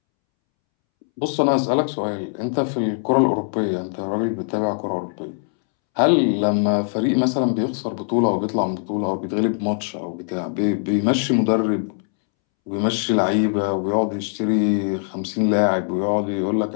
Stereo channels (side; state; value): right; silent; 65 dB below the other